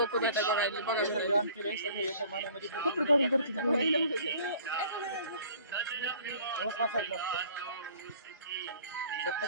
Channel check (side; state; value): both; inverted; correlation -0.50